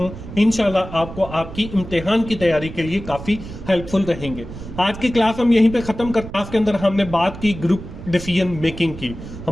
इंशाल्लाह आपको आपकी इम्तिहान की तैयारी के लिए काफी हेल्पफुल रहेंगे। आज की क्लास हम यहीं पे खत्म करते हैं। क्लास के अंदर हमने बात की ग्रुप डिसीजन मेकिंग की।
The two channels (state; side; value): noise; right; rumble, 12 dB below the sound